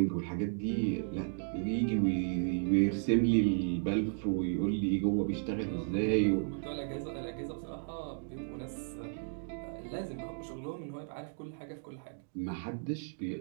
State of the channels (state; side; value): silent; left; digital silence